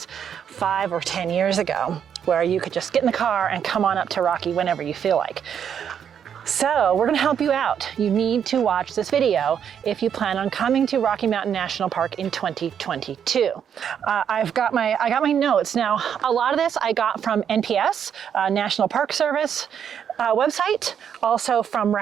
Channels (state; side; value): quieter; left; 8.3 dB